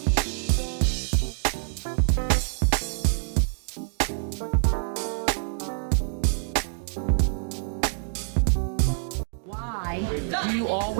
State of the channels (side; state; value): left; silent; digital silence